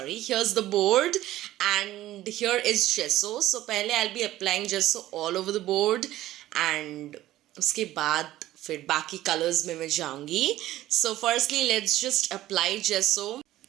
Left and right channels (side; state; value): left; quieter; 14.9 dB